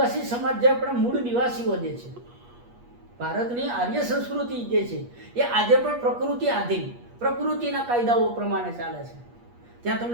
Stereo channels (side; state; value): left; late; 8.4 ms